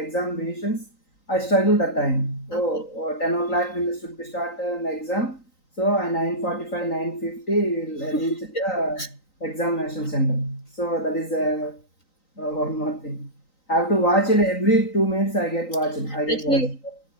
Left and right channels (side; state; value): right; late; 3.9 ms